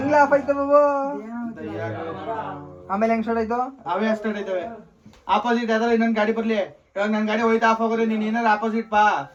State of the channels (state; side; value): identical; both; correlation 1.00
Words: ಆಫ್ ಆಯ್ತು ಬಾಬು? ಆಮೇಲೆ ಹೆಂಗ್ ಸ್ಟಾರ್ಟ್ ಆಯ್ತು? ಅವೇ ಸ್ಟಾರ್ಟ್ ಆಯ್ತವೆ. ಆಪೋಸಿಟ್ ಯಾವ್ದಾರ ಇನ್ನೊಂದ್ ಗಾಡಿ ಬರ್ಲಿ, ಇವಾಗ ನನ್ ಗಾಡಿ ಹೋಯ್ತಾ ಆಫ್ ಆಗೋದ್ರೆ ನೀನ್ ಏನಾರ ಆಪೋಸಿಟ್ ಬಾ,